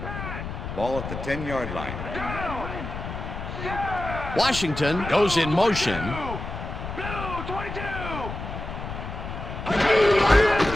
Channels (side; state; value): left; noise; rumble, 7 dB below the sound